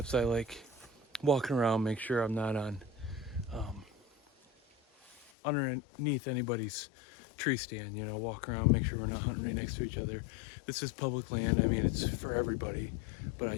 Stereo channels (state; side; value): drops out; right; at 5.3 s